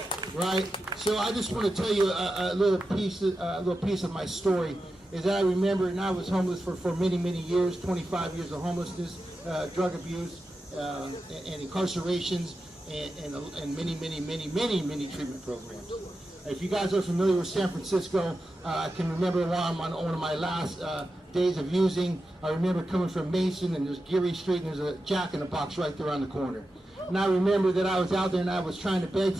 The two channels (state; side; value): normal; both; correlation 0.91